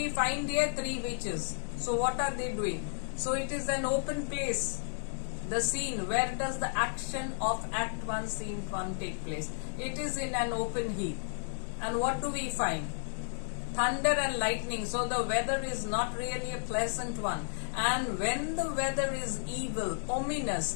find here? Three witches. So what are they doing? So it is an open place. The scene, where does the action of Act 1, Scene 1 take place? It is in an open heath. And what do we find? Thunder and lightning. So the weather is not really a pleasant one. And when the weather is evil,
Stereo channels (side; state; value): right; silent; digital silence